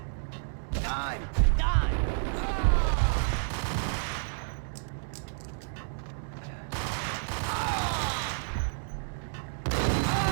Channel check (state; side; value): silent; left; 58 dB below the other